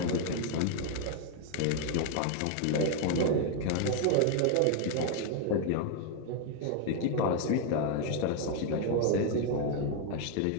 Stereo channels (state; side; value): different; both; correlation 0.00